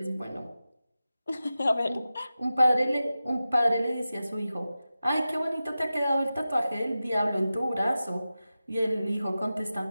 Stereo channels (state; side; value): inverted; both; correlation -0.94